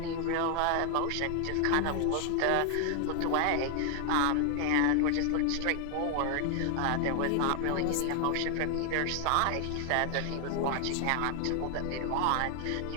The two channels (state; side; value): different; both; correlation 0.00